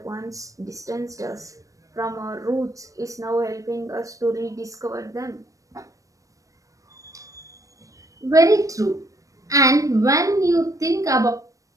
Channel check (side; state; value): left; late; 0.16 ms